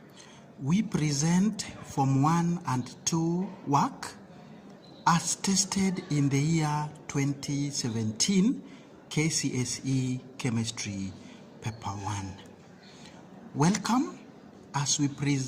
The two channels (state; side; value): identical; both; correlation 1.00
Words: We present Form 1 and 2 work as tested in the year 2017 KCSE Chemistry Paper 1. Welcome as we